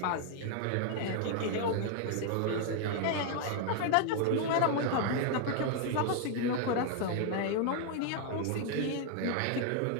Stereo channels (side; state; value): both; different; correlation 0.00